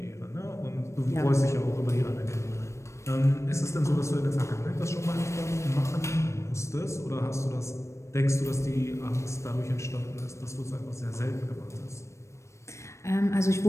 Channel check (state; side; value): late; right; 0.14 ms